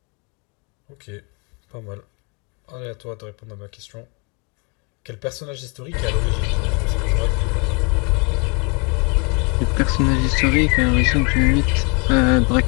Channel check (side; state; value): right; quieter; 33.2 dB